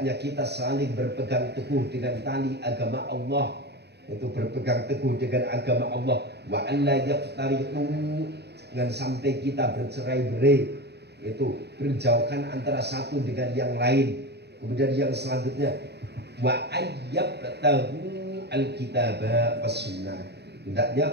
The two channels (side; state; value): left; late; 0.48 ms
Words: kita saling berpegang teguh dengan tali agama Allah. Itu berpegang teguh dengan agama Allah. Wa alla yaftariqu, jangan sampai kita bercerai-berai, itu berjauhan antara satu dengan yang lain. Kemudian yang selanjutnya wa ayyabtahu alkitaba was sunnah, hendaknya